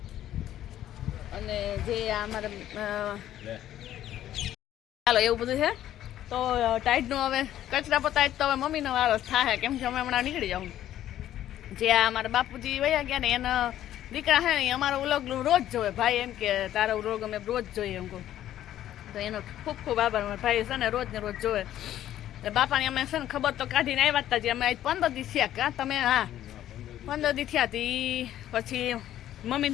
અને જે અમારે ચાલો એવું બધું છે. તો ટાઈડનું હવે કચરા પતાય તો હવે મમ્મીનો વારો થાય. કેમ કે અમે હમણાં નીકળી જાઉં. જે આ અમારા બાપુજી વયા ગયા ને એના દીકરા છે ને અમારો વ્લોગ રોજ જોવે. ભાઈ એમ કે તારો વ્લોગ અમે રોજ જોઈએ એમ કહું. તો એનો ખૂબ ખૂબ આભાર. મારા ભાઈ છે ને રોજ જોવે. એટલે બાપાની અમે છે ને ખબર તો કાઢીને આવ્યા હતા. જે અમે 15 દિવસ થયા કા તમે? હા 15 દિવસ થયા હતી. પછી મમ્મી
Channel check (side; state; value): right; quieter; 12.2 dB